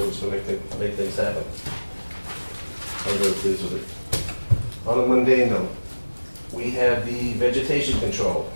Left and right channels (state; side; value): inverted; both; correlation -1.00